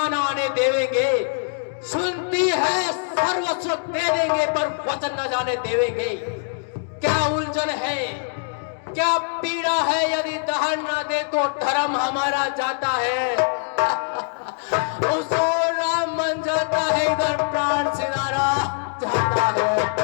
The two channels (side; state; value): right; silent; digital silence